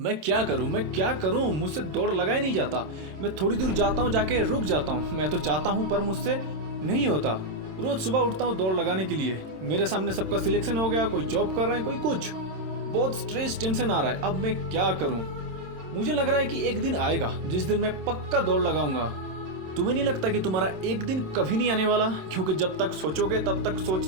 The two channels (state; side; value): late; left; 27 ms